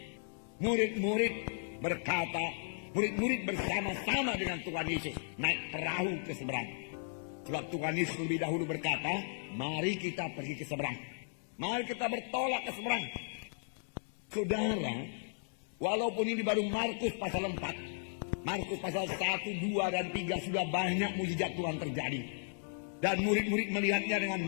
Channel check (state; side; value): silent; right; digital silence